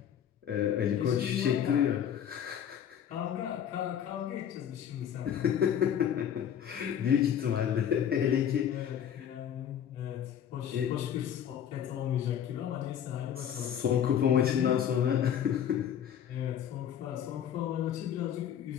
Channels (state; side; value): quieter; right; 9.3 dB